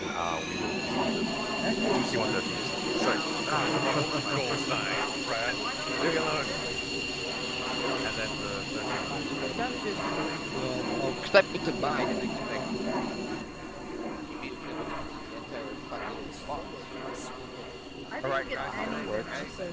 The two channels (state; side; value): identical; both; correlation 1.00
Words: we will do C-130s. Sorry. Leave me alone. And then the 13. Step me to buy the next thing. Alright, guys. So